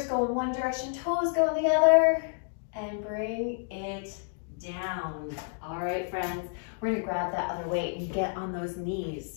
go in one direction, toes go in the other. And bring it down. All right, friends. We're gonna grab that other weight and get on those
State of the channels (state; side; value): silent; right; 58 dB below the other